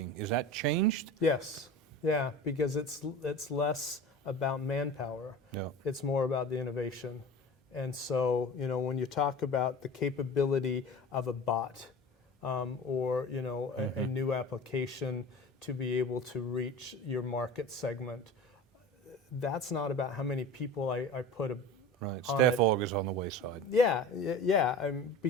Is that changed? Yes, yeah, because it's less about manpower. Yeah. It's more about the innovation. And so, you know, when you talk about the capability of a bot or, you know, a new application to be able to reach your market segment, that's not about how many people I put Right, staff aug is on the wayside. Yeah,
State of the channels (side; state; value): both; normal; correlation 0.35